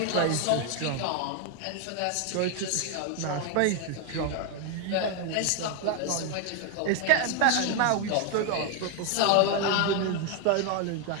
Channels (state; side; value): different; both; correlation 0.01